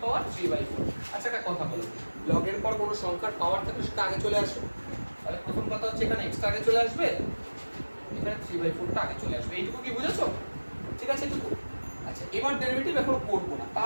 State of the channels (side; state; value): both; inverted; correlation -1.00